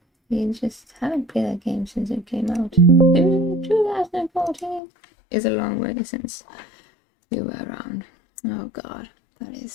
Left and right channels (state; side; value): drops out; right; at 4.8 s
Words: you just haven't played that game since it came out. 2014. It's a long way since you were around. Oh god, that